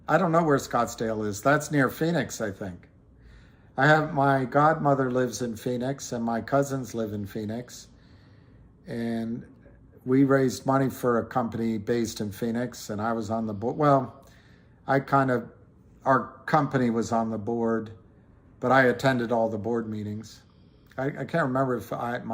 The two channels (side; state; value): both; identical; correlation 1.00